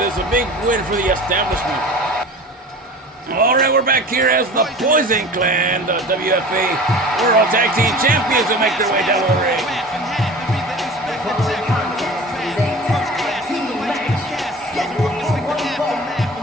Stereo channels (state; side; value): normal; both; correlation 0.38